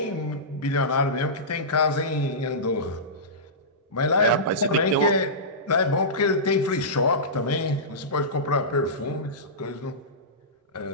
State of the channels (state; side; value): normal; both; correlation -0.18